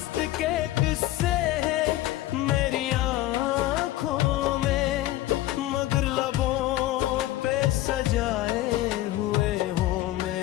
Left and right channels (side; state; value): right; quieter; 15.4 dB